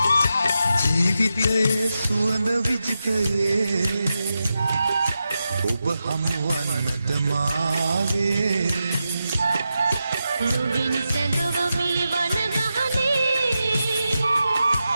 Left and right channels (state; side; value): inverted; both; correlation -0.89